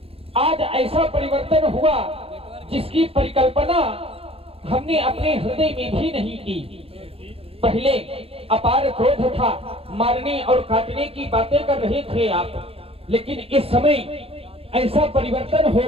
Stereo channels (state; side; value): late; left; 0.28 ms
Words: आज ऐसा परिवर्तन हुआ जिसकी परिकल्पना हमने अपने हृदय में भी नहीं की। पहले अपार क्रोध था, मारने और काटने की बातें कर रहे थे आप, लेकिन इस समय ऐसा परिवर्तन हो